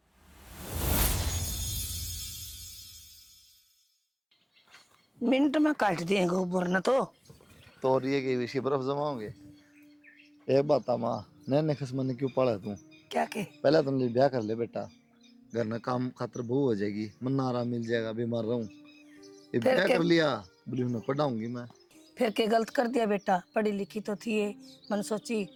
मिनट में काट देंगे ऊपर न तो ये के विषय बर्फ जमाओगे। एक बात माँ नैने खसमन ने क्यों पाला तू? क्या के पहले तुम ब्याह कर ले बेटा, घर में काम खातर बहू हो जाएगी, मन आराम मिल जाएगा, बीमार रहूं। ये ब्याह कर लिया बोली मैं पढ़ाऊंगी मैं। फिर के गलत कर दिया बेटा, पढ़ी लिखी तो थी ये, मन सोची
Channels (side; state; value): both; identical; correlation 1.00